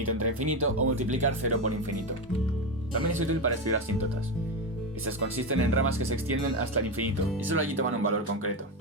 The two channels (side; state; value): both; normal; correlation 0.14